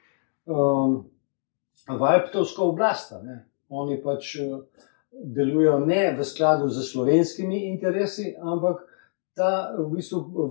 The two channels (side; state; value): right; silent; digital silence